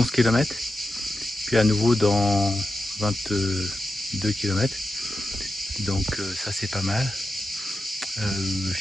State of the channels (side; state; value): both; normal; correlation 0.91